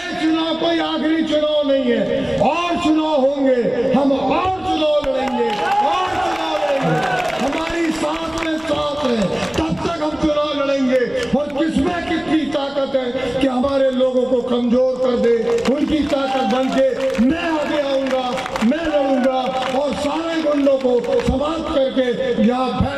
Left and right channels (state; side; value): noise; right; rumble, 25 dB below the sound